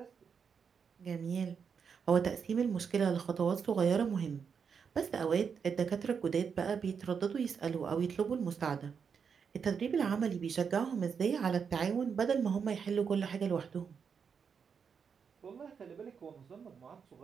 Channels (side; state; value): left; quieter; 6.4 dB